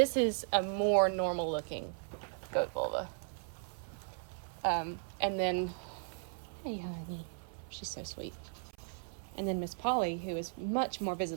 is a more normal looking goat vulva. And then, hey honey, she's so sweet. And then Miss Polly, who is much more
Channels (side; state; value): left; silent; 53 dB below the other